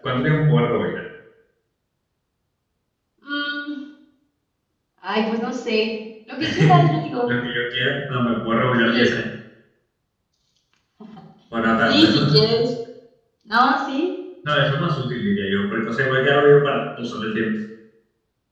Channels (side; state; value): both; identical; correlation 1.00